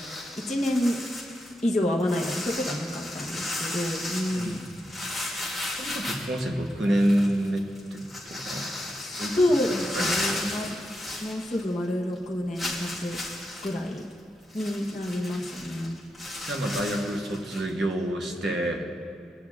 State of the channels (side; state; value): both; normal; correlation 0.85